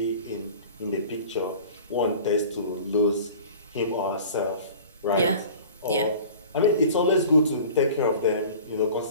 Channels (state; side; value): inverted; both; correlation -0.42